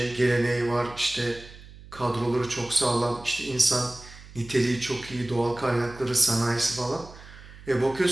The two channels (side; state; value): right; noise; hum, 18 dB below the sound